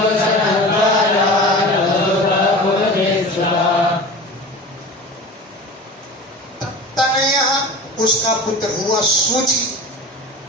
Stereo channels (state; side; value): normal; both; correlation 0.34